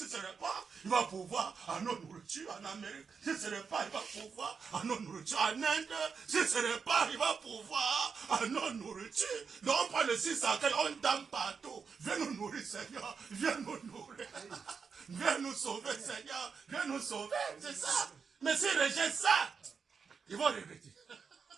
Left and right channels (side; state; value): left; quieter; 5.7 dB